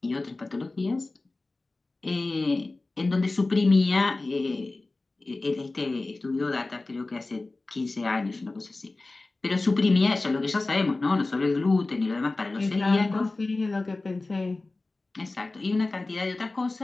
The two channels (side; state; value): right; quieter; 3.2 dB